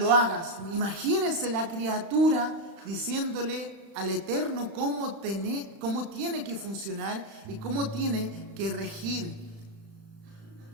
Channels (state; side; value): late; left; 35 ms